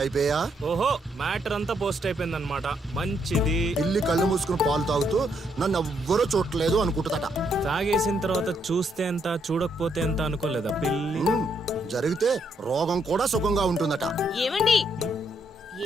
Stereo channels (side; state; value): both; normal; correlation 0.75